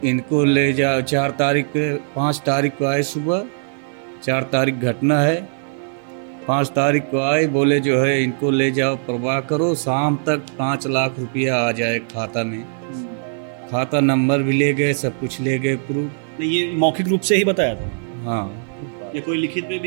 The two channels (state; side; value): silent; left; 55 dB below the other